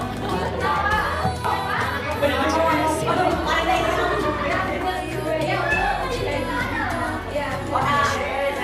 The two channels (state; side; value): identical; both; correlation 1.00